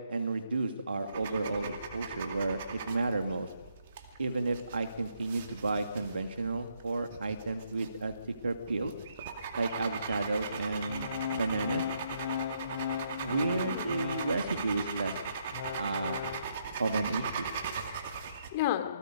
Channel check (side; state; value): both; inverted; correlation -0.74